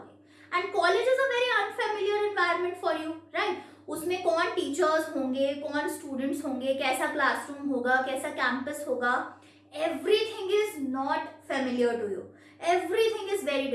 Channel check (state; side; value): identical; both; correlation 1.00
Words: and college is a very unfamiliar environment for you, right? उसमें कौन टीचर्स होंगे, कौन स्टूडेंट्स होंगे, कैसा क्लासरूम होगा, कैसा कैंपस होगा, everything is not familiar to you. Everything is very